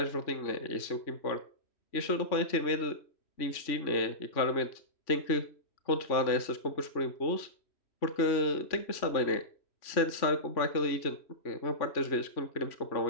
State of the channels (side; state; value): right; late; 3.5 ms